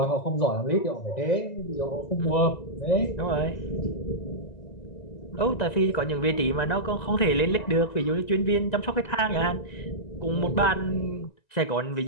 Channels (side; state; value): right; late; 1.9 ms